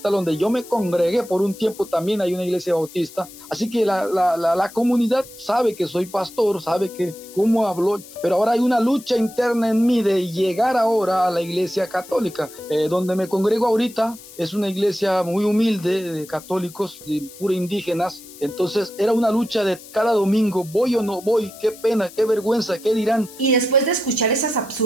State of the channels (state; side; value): noise; left; hiss, 18 dB below the sound